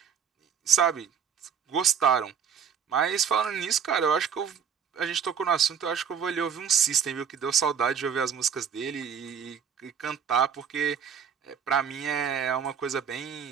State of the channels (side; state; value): left; quieter; 7.4 dB